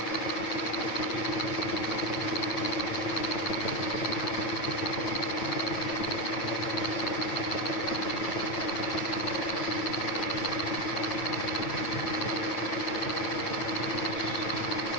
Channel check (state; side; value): late; right; 8.9 ms